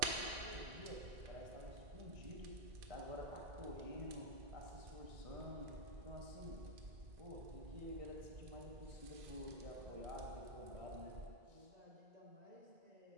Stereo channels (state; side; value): late; left; 2.4 ms